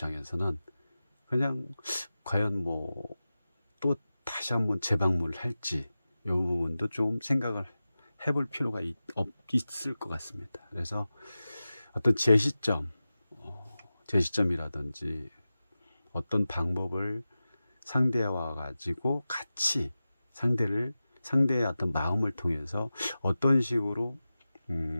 그냥 과연 뭐 또 다시 한번 재방문을 할지, 이 부분도 좀 생각을 해볼 필요가 있을 것 같습니다. 그래서 어떤 제시점이라든지 어떤 방법을 상대와 가지고 같이 상대의 어떤 마음을 통해서 어떤 식으로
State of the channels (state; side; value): inverted; both; correlation -0.95